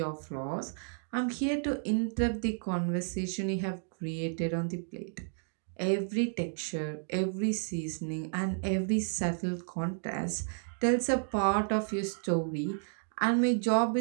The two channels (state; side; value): silent; left; digital silence